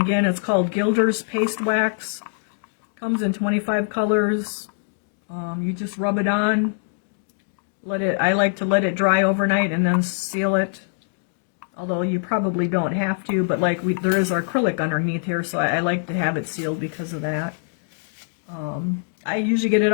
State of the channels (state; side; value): silent; right; digital silence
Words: it's called Gilder's Paste Wax. Comes in 25 colors. You just rub it on. I like to let it dry overnight and then seal it. Although you probably don't have to, but like there is acrylic underneath here, so I like to have it sealed because of that. I usually get it